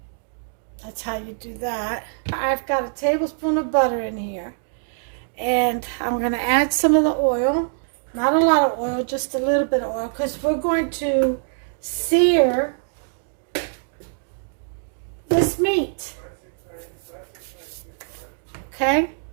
That's how you do that. I've got a tablespoon of butter in here. And I'm going to add some of the oil. Not a lot of oil, just a little bit of oil. Because we're going to sear this meat. Okay?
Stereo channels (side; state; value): left; silent; digital silence